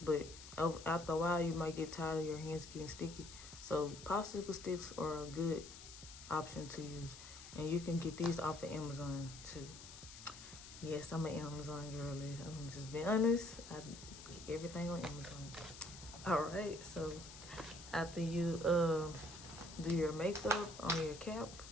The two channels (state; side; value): noise; left; hiss, 14 dB below the sound